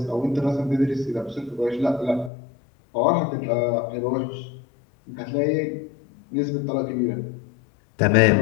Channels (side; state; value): right; drops out; at 2.3 s